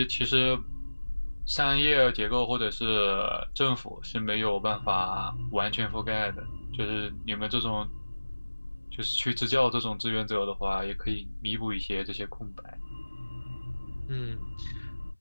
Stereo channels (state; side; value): inverted; both; correlation -1.00